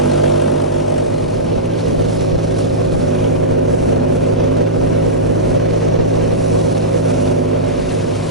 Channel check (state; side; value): normal; both; correlation -0.15